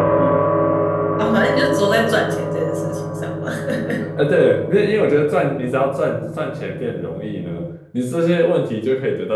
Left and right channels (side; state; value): both; identical; correlation 1.00